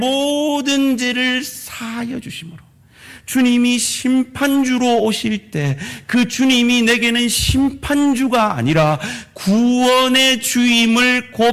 죄를 사하여 주심으로 주님이 심판주로 오실 때 그 주님이 내게는 심판주가 아니라 구원의 주임을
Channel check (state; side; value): identical; both; correlation 1.00